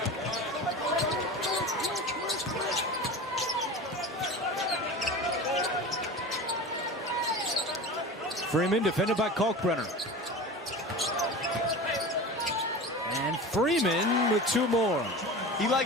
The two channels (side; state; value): both; normal; correlation 0.32